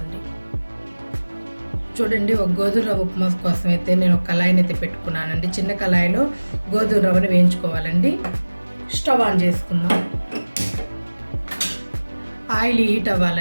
చూడండి, ఒక గోధుమ రవ్వ ఉప్మా కోసం అయితే నేను ఒక కళాయిని అయితే పెట్టుకున్నానండి. చిన్న కళాయిలో గోధుమ రవ్వని వేయించుకోవాలండి. స్టవ్ ఆన్ చేసుకుందాం. ఆయిల్ హీట్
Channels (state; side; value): inverted; both; correlation -1.00